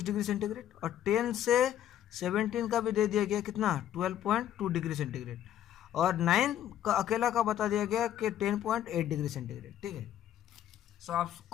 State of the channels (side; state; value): right; quieter; 11.3 dB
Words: डिग्री सेंटीग्रेड, और 10 से 17 का भी दे दिया गया कितना 12.2 डिग्री सेंटीग्रेड, और 9 का अकेला का बता दिया गया कि 10.8 डिग्री सेंटीग्रेड। ठीक है, सो